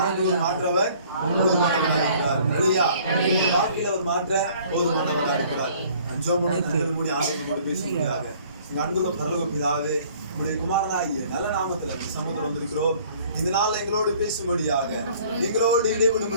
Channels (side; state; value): both; inverted; correlation -0.55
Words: மாற்றவர் போதுமானவராக இருக்கிறார். அல்லேலூயா. வாழ்க்கையில அவர் மாற்ற போதுமானவராக இருக்கிறார். மூடி ஆண்டவரோடு பேசுகிறாங்க. உங்க அன்புள்ள பரலோக பிதாவே, உங்களுடைய குமாரனாகிய நல்ல நாமத்துல சமூகத்தில் வந்திருக்கிறோம். இந்த நாள் எங்களோடு பேசும்படியாக, எங்களோடு